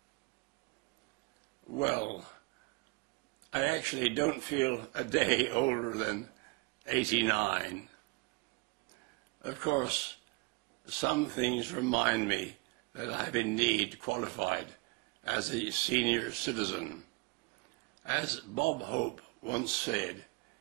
Well, I actually don't feel a day older than 89. Of course, some things remind me that I have indeed qualified as a senior citizen. As Bob Hope once said,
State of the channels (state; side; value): quieter; left; 26.9 dB